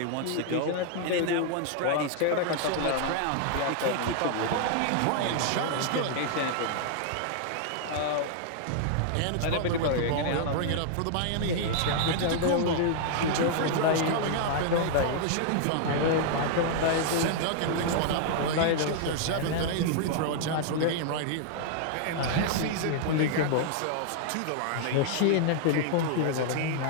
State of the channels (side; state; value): both; different; correlation 0.00